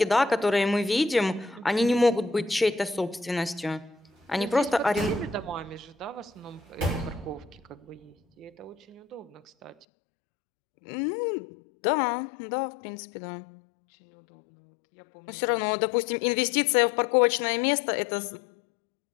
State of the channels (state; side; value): drops out; right; at 9.9 s